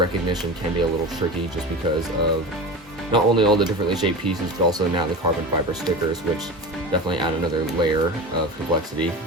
can be a little tricky, just because of not only all the differently shaped pieces, but also now the carbon fiber stickers, which definitely add another layer of complexity,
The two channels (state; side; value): normal; both; correlation 0.28